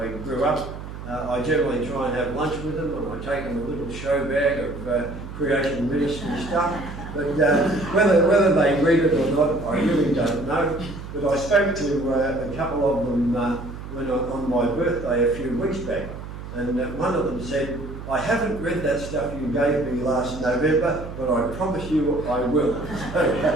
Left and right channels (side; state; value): right; noise; hum, 11 dB below the sound